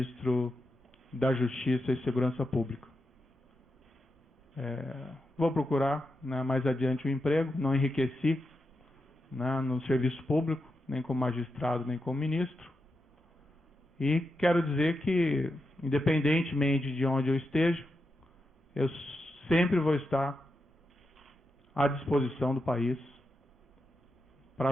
da Justiça e Segurança Pública. Vou procurar, né, mais adiante um emprego, não enriqueci, né, no serviço público, nem como magistrado, nem como ministro, e quero dizer que, independentemente de onde eu esteja, eu sempre vou estar à disposição do país para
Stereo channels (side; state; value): both; normal; correlation 0.87